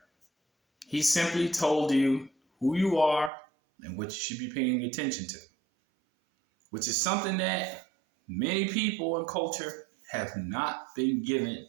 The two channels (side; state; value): left; drops out; at 3.3 s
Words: He simply told you who you are and what you should be paying attention to, which is something that many people in culture have not been given